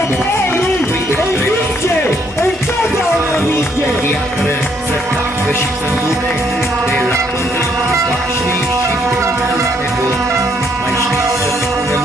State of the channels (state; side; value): normal; both; correlation 0.70